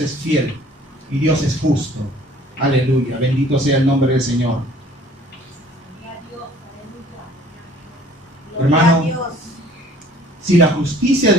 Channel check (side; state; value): both; normal; correlation 0.53